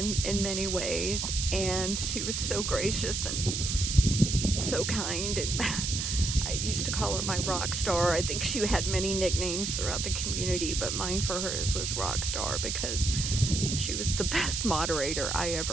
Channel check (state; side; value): noise; right; hiss, 2 dB below the sound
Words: many ways, and she was so gracious and so kind, and I used to call her my rock star. I think she had many nicknames throughout the community, but mine for hers was rock star because she was the best moderator I